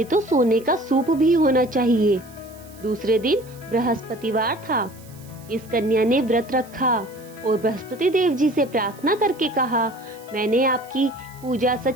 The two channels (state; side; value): noise; right; hiss, 24 dB below the sound